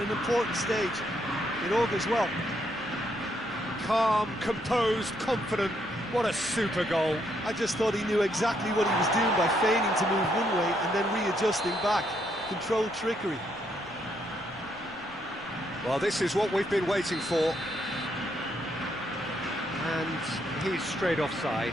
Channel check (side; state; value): left; noise; rumble, 26 dB below the sound